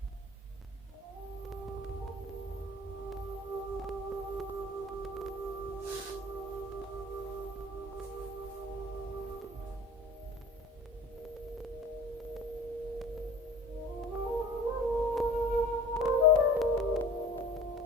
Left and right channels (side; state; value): both; normal; correlation 0.43